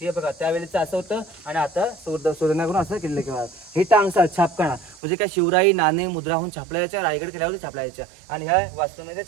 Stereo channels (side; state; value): left; drops out; at 5.0 s